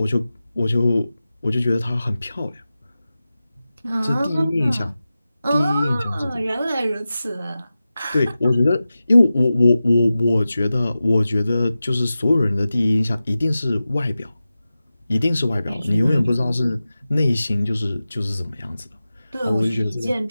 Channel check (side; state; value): both; inverted; correlation -0.94